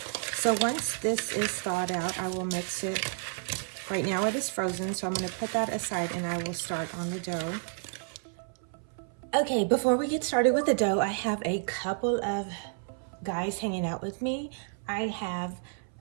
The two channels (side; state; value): left; silent; 57 dB below the other